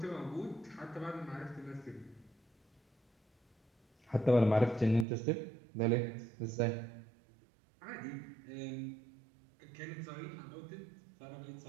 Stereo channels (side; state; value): left; drops out; at 5.1 s